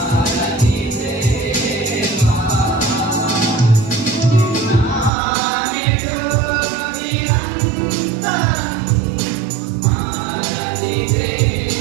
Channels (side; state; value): left; drops out; at 5.1 s